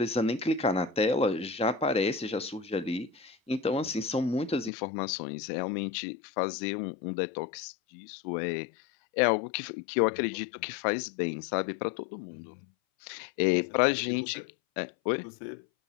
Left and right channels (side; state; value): right; drops out; at 4.7 s